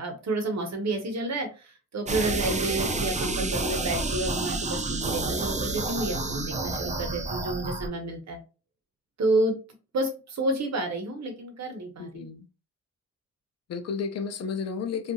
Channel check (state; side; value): normal; both; correlation 0.31